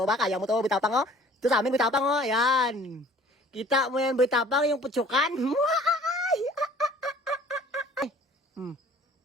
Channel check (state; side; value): normal; both; correlation 0.52